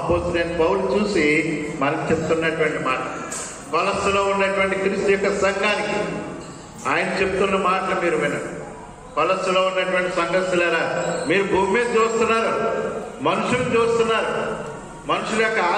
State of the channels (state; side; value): identical; both; correlation 1.00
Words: పౌలు చూసి మనకు చెప్తున్నటువంటి మాట. కొలస్సీలో ఉన్నటువంటి క్రీస్తు యొక్క సంఘానికి ఆయన చెప్తున్న మాటలు మీరు వినండి. కొలస్సీలో ఉన్నటువంటి సంఘస్థులారా, మీరు భూమి మీద చూస్తున్నారు, మనుషులు చూస్తున్నారు, మనుషుల యొక్క